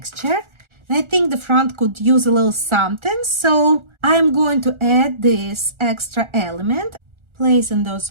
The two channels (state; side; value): late; left; 1.4 ms